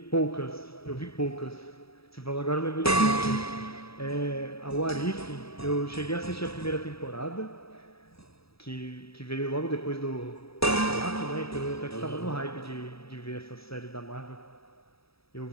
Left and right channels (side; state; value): right; late; 0.77 ms